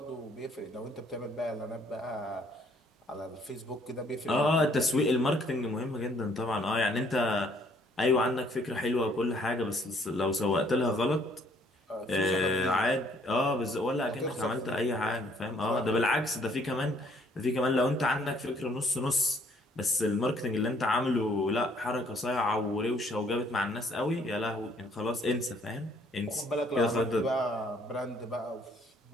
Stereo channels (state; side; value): normal; both; correlation 0.63